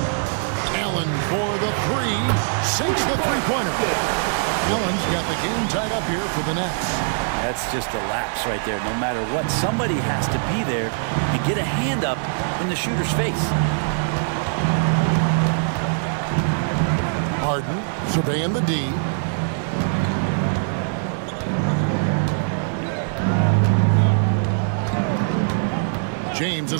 Allen for the 3. Sinks the three-pointer. Allen's got the game tied up here for the Nets. That's just a lapse right there. No matter what, somebody has to be there and get a hand up in the shooter's face. Harden surveying the D. James a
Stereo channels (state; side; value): silent; left; digital silence